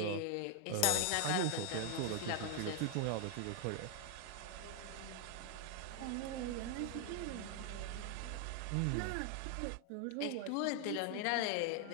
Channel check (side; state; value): both; different; correlation 0.00